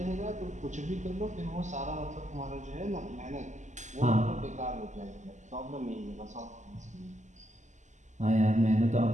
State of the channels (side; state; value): left; late; 0.34 ms